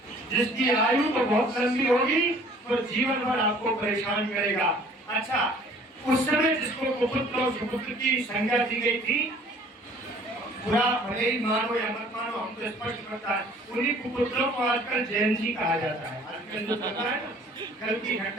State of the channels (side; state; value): both; normal; correlation 0.53